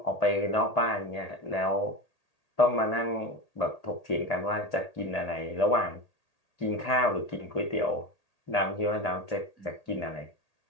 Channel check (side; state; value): right; late; 1.8 ms